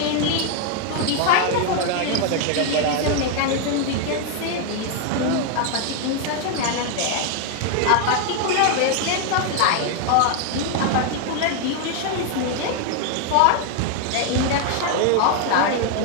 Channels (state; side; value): different; both; correlation 0.00